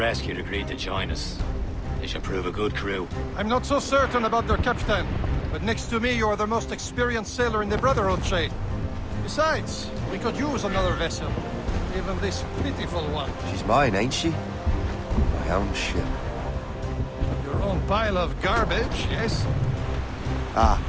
agreed to join us. They should prove a good crew. I'm not so certain about their captain, but next to me you are the most experienced sailor in the Brotherhood, Shay. Besides, we could use another vessel. Even this pitiful one. She's mine, ain't she? My own ship. Your own pile of garbage, yes? Ah,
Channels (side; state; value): both; identical; correlation 1.00